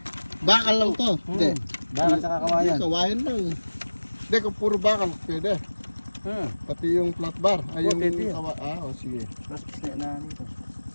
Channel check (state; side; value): inverted; both; correlation -1.00